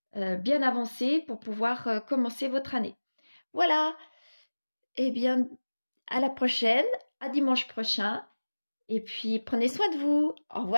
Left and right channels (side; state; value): both; inverted; correlation -1.00